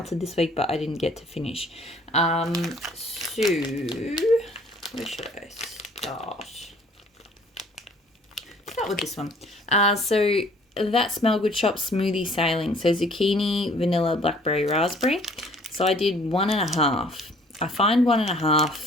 this week but I didn't get to finish. So where should I start? Start with this one. So that Smell Good Shop smoothie sailing. So zucchini, vanilla, blackberry, raspberry. So I did 1.5. I find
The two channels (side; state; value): both; normal; correlation 0.56